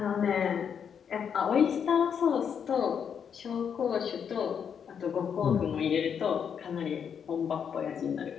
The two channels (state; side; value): quieter; right; 7.5 dB